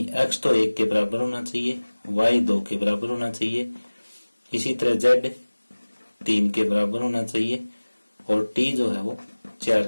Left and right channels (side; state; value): both; inverted; correlation -1.00